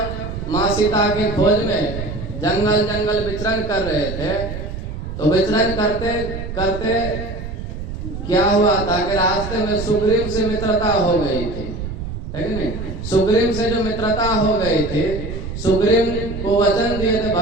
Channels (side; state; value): right; noise; rumble, 7 dB below the sound